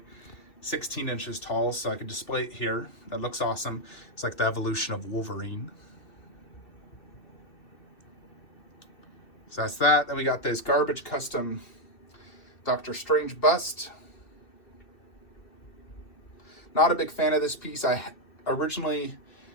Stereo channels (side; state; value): right; late; 2.6 ms